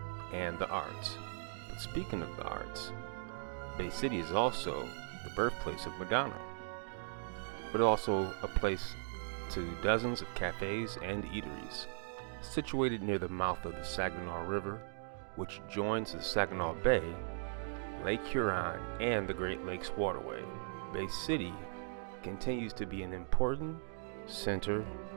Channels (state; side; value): silent; left; digital silence